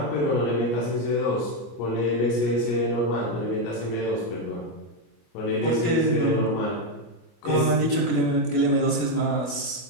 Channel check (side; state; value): right; late; 24 ms